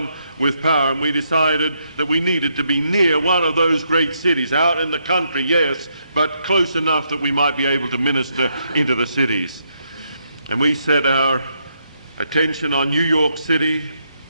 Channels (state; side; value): inverted; both; correlation -0.77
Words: with power. And we decided that we needed to be near one of those great cities, out in the country, yes, but close enough that we might be able to minister into the cities. And we set our attention on New York City,